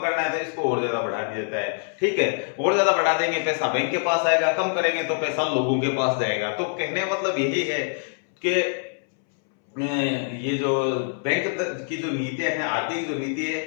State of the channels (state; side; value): silent; right; 62 dB below the other